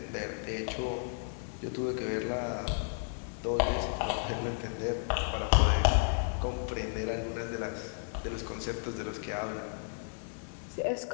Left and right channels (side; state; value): right; silent; digital silence